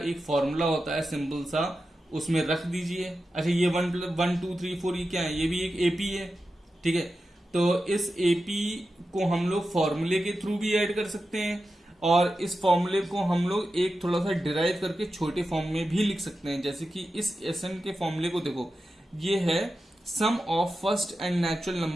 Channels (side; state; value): both; normal; correlation 0.91